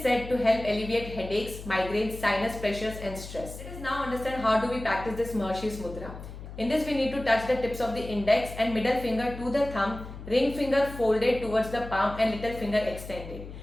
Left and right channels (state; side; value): noise; left; hum, 12 dB below the sound